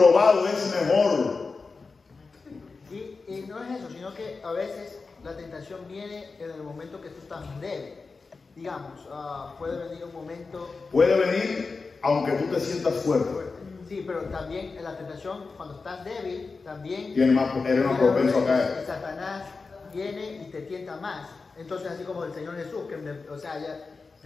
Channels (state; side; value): quieter; right; 4.3 dB